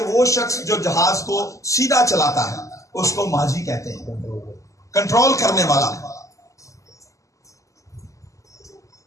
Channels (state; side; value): late; right; 0.16 ms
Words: वो शख्स जो जहाज को सीधा चलाता है उसको माझी कहते हैं, कंट्रोल करने वाला।